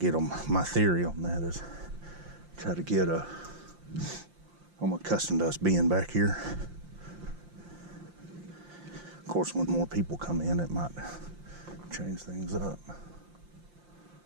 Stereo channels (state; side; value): late; left; 5.7 ms